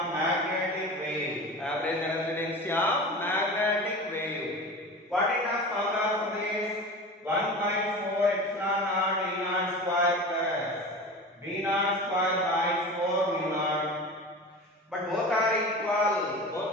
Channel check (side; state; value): both; normal; correlation 0.32